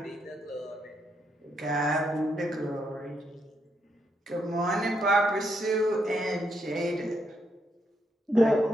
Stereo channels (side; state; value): both; normal; correlation 0.78